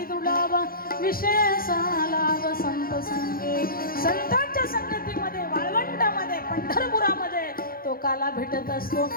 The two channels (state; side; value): late; right; 0.42 ms